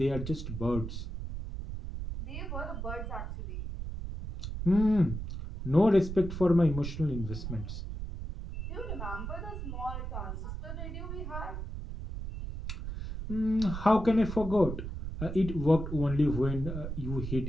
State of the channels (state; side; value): noise; right; rumble, 6 dB below the sound